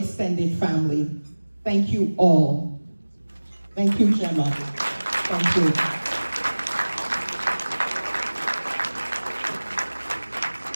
family. Thank you all. Thank you, Gemma. Thank you.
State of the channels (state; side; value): inverted; both; correlation -1.00